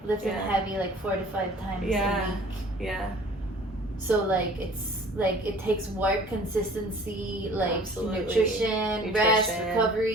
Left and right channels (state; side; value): normal; both; correlation 0.49